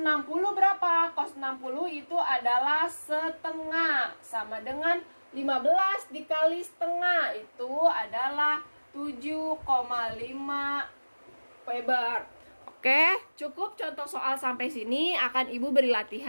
berapa? Cos 60 itu adalah setengah sama dengan 15 dikali setengah itu adalah 7,5 Weber. Oke, cukup contoh soal sampai sini, akan Ibu beri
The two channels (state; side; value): inverted; both; correlation -1.00